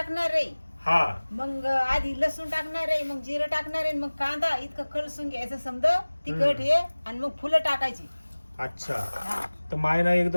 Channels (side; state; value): both; inverted; correlation -1.00